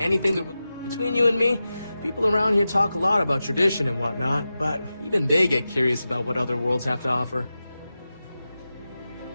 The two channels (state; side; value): inverted; both; correlation -0.93